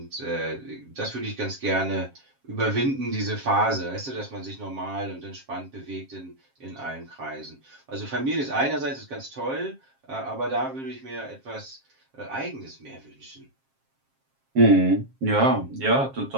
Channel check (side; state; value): left; late; 7.5 ms